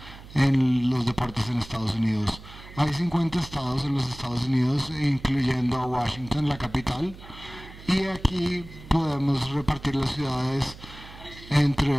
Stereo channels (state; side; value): noise; right; hum, 17 dB below the sound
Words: en los deportes en Estados Unidos. Hay 50 estados en los Estados Unidos, incluyendo a Washington, la capital, y aquí podemos repartir las ciudades